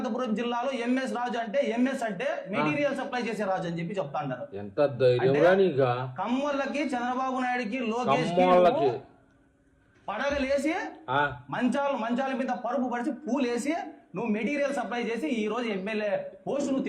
జిల్లాలో ఎంఎస్ రాజు అంటే ఎంఎస్ అంటే మెటీరియల్ సప్లై చేసే రాజు అని చెప్పి చెప్తా ఉంటారు. కమ్మోళ్ళకి చంద్రబాబు నాయుడుకి లోకేష్ పడగలేసి మంచాల మీద పరుపు పరిచి పూలేసి నువ్వు మెటీరియల్ సప్లై చేసి ఈ రోజు ఎమ్మెల్యే పోస్ట్ నువ్వు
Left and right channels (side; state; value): both; identical; correlation 1.00